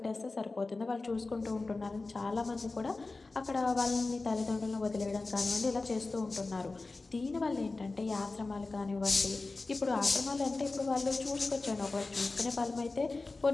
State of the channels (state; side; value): quieter; right; 3.5 dB